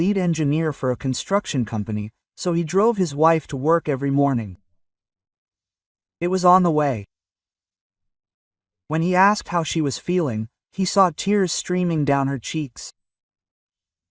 engineer for a construction company, so he drove his wife to work every morning. It was on the way. When he asked how she was feeling, he saw tears streaming down her cheeks.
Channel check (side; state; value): both; identical; correlation 1.00